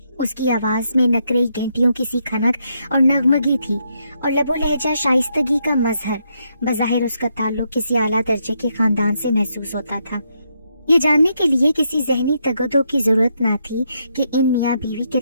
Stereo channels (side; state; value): both; inverted; correlation -0.78